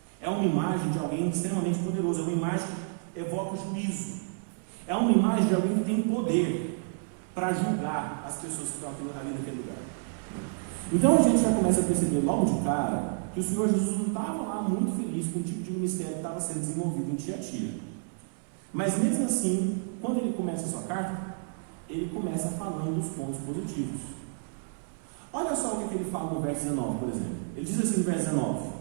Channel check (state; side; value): silent; left; 58 dB below the other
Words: é uma imagem de alguém extremamente poderoso, é uma imagem que evoca juízo, é uma imagem de alguém que tem poder para julgar as pessoas que estão ali naquele lugar. Então a gente já começa a perceber logo de cara que o Senhor Jesus não estava lá muito feliz com o tipo de ministério que estava sendo desenvolvido em Tiatira. Mas mesmo assim, quando ele começa a sua carta, ele começa falando dos pontos positivos. Olha só o que ele fala no verso 19, por exemplo. Ele diz assim no verso 19: